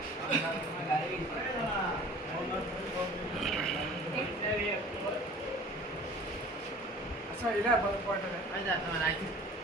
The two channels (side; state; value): both; normal; correlation 0.45